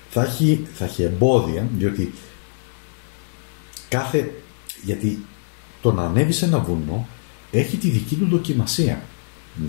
θα έχει εμπόδια, γιατί το να ανέβεις σε ένα βουνό έχει τη δική του δοκιμασία.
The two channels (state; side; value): silent; right; digital silence